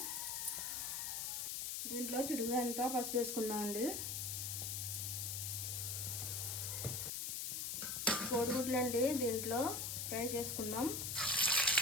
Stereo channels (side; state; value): left; noise; hiss, 2 dB below the sound